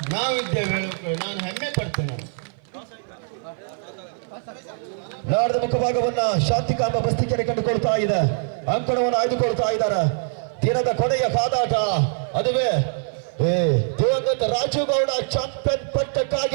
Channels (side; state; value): left; silent; 58 dB below the other